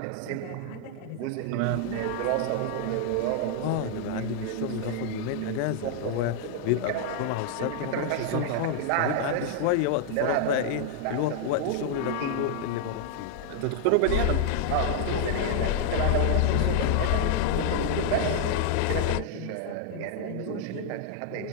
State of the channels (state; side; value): different; both; correlation 0.00